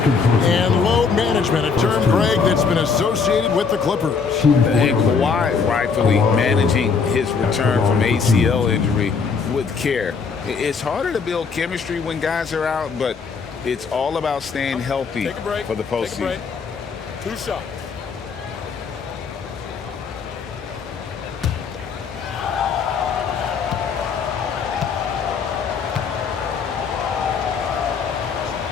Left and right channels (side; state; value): right; quieter; 5.4 dB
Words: And load management, a term, Greg, that's been associated with the Clippers. And Kawhi rightfully managing his return from ACL injury with care. It's harder to build chemistry when guys are out, but it's all about staying healthy for the postseason. 2 shots.